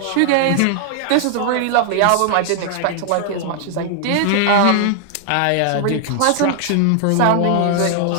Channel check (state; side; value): different; both; correlation 0.00